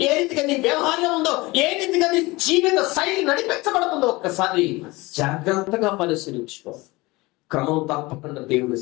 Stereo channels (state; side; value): quieter; right; 22.3 dB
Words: ఏ రీతిగా నీ వ్యవహారం ఉందో, ఏ రీతిగా నీ జీవిత శైలి నడిపించబడుతుందో ఒక్కసారి జాగ్రత్తగా పరిశీలించుకో. క్రమం తప్పకుండా దేవుని